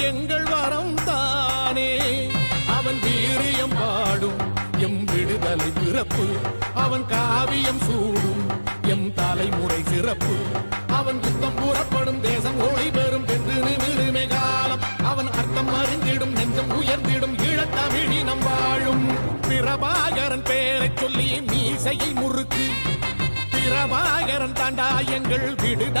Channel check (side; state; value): both; inverted; correlation -1.00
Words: எங்கள் வரம் தானே அவன் வீரியம் பாடும் எம் விடுதலை பிறப்பு அவன் காவியம் சூடும் எம் தலைமுறை சிறப்பு அவன் குத்தம் கூறப்படும் தேசம் ஒளி பெறும் என்று நிமிருமே காலம் அவன் அர்த்தம் அறிந்திடும் நெஞ்சம் உயர்ந்திடும் ஈழத்தமிழினம் வாழும் பிரபாகரன் பேரை சொல்லி மீசையை முறுக்கு பிரபாகரன் தாண்டா எங்கள்